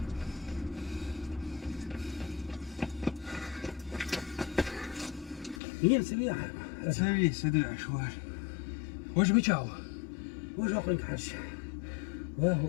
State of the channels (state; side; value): drops out; right; at 5.6 s